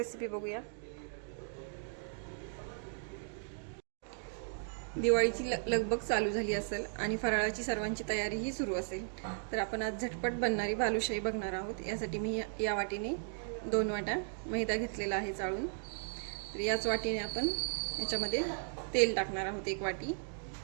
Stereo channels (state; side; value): silent; left; digital silence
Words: बघूया। दिवाळीची लगबग चालू झाली असेल आणि फराळाची सर्वांची तयारीही सुरू असेल, तर आपण आज झटपट बनणारी बालुशाही बघणार आहोत। यासाठी मी या वाटीने 2 वाट्या मैदा घेतलेला आहे चाळून। तर याच वाटीने आपण याच्यामध्ये तेल टाकणार आहोत, 1 वाटी